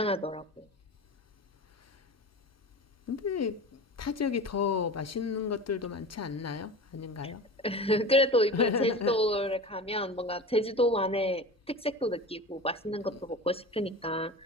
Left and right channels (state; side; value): normal; both; correlation 0.32